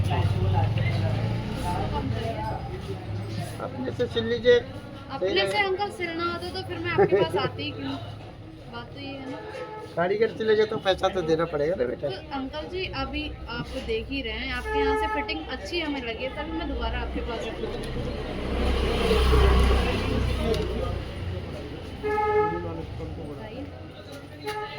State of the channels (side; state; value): both; identical; correlation 1.00